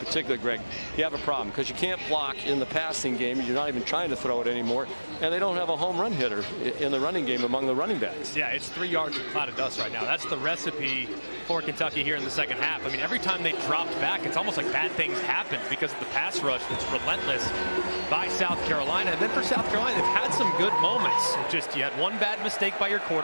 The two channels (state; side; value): inverted; both; correlation -1.00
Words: Greg, you have a problem because you can't block in the passing game. You're not even trying to throw it anymore. And they don't have a home run hitter in the running game among the running backs. Yeah, it's 3 yards of cloud of dust right now. That's the recipe for Kentucky here in the second half. I mean, every time they dropped back, it's almost like bad things happened because of the pass rush that's relentless by South Carolina. And then for South Carolina, they've had some good moments. It's just you had one bad mistake by your